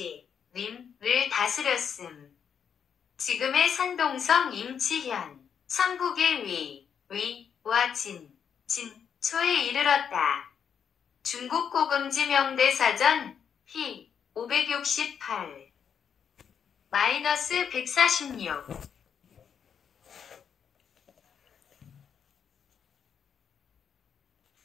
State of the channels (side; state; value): right; quieter; 7.6 dB